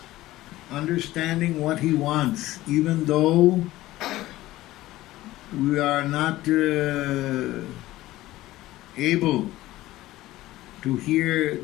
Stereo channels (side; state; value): right; quieter; 16.6 dB